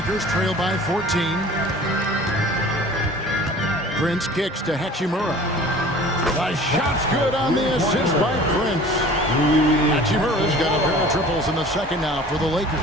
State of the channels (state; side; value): normal; both; correlation 0.45